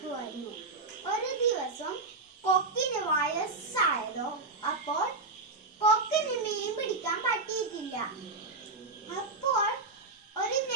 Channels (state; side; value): quieter; left; 3.6 dB